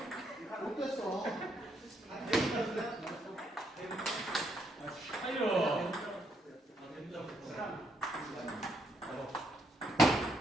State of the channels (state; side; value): normal; both; correlation 0.74